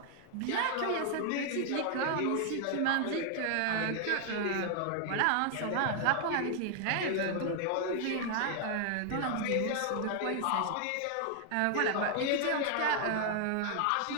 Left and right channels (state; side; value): different; both; correlation 0.00